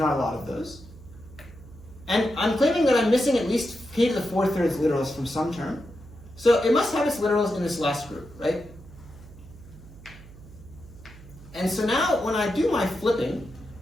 a lot of those. And I'm claiming that I'm missing at least k to the 4/3 literals from some term. So it must have its literals in this last group, right? And so now when I do my flipping,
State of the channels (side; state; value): right; noise; hum, 19 dB below the sound